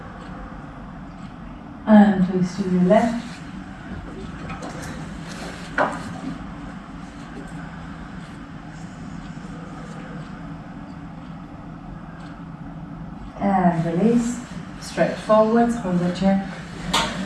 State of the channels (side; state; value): both; identical; correlation 1.00